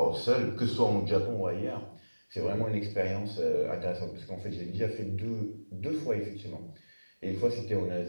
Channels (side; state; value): both; inverted; correlation -1.00